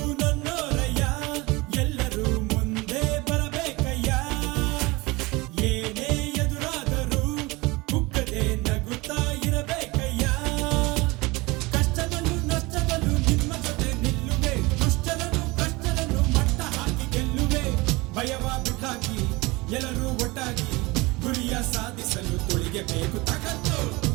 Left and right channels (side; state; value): left; quieter; 23.4 dB